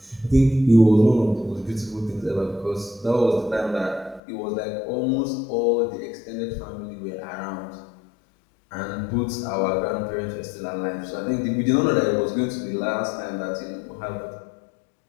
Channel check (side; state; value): right; drops out; at 4.2 s